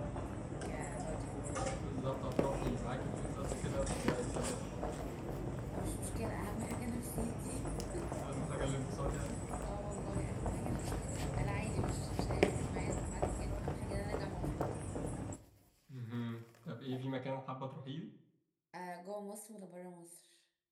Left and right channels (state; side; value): identical; both; correlation 1.00